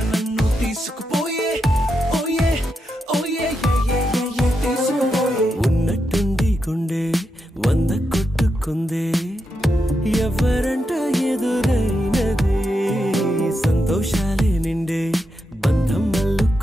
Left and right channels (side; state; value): both; normal; correlation 0.85